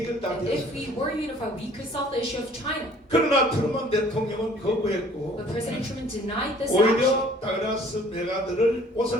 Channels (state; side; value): normal; both; correlation 0.54